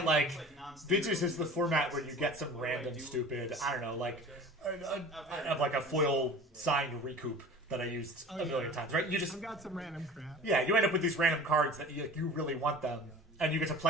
like Vintage is the format where you get some random stupid I don't know like I have like a foil signed recoup that I used a million times, right? You just I've got some random crap. yeah, you end up with these random cards that you really want them, and you get to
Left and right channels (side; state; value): both; normal; correlation 0.40